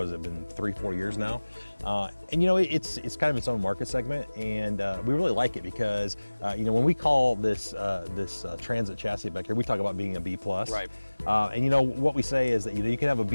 has it been, 3-4 years now, and you know, it's kind of its own market segment, and we really like it because you know, when we call this Transit chassis back here, we talk about being a B+. Right. And you know what we say is that, you know, you can have a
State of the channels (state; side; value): inverted; both; correlation -1.00